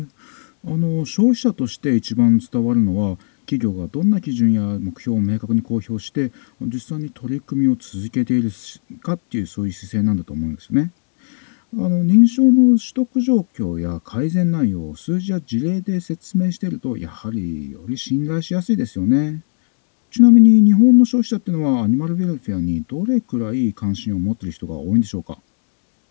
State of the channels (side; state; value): right; silent; digital silence